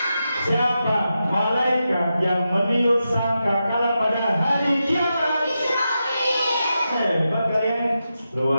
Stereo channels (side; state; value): both; inverted; correlation -0.89